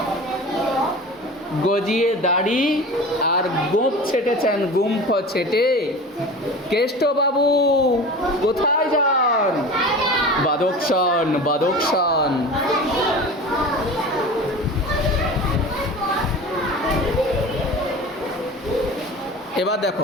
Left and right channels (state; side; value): normal; both; correlation 0.35